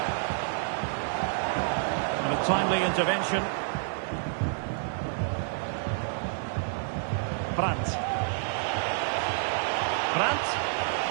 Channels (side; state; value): left; silent; digital silence